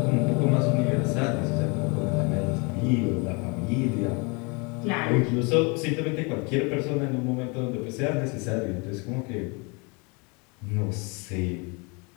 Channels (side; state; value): right; quieter; 30.9 dB